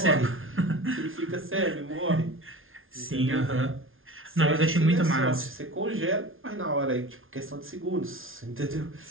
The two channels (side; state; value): left; late; 0.59 ms